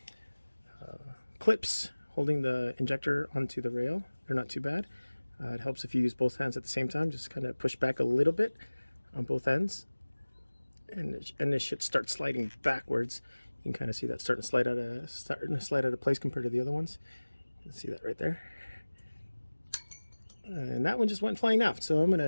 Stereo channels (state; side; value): inverted; both; correlation -1.00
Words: clips holding the injector onto the rail, they're not too bad. It helps if you use both hands at the same time. Just kind of push back a little bit on both ends, and it should start sliding backwards. You can kind of see that starting to slide out of place compared to the other ones. You can see that right there. And that one just went flying out. So I'm